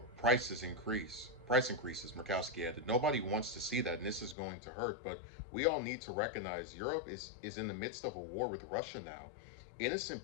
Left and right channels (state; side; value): drops out; right; at 4.4 s